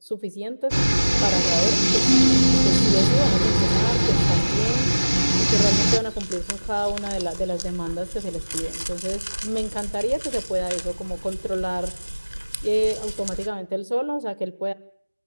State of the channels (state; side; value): inverted; both; correlation -1.00